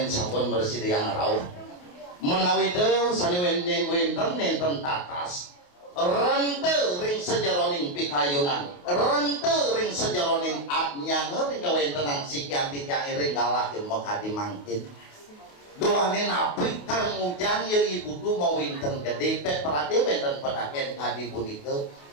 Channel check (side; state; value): right; late; 28 ms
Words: sampun bersih yang rauh menawi teu sani wenten tatas rente ring sejaroning pikayunan rente ring sejaroning abnyange ring kawentenan sekian tijang ring galah mekadi mangkin doanin api kang ujang ya ibu tu mau winten gede pet perade wenten pedaken kadi punika